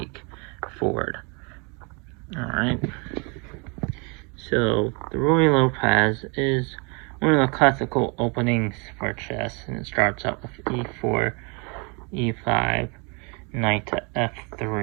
forward. Alright. So the Ruy Lopez is one of the classical openings for chess, and it starts out with e4, e5, knight to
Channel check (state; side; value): quieter; left; 32.6 dB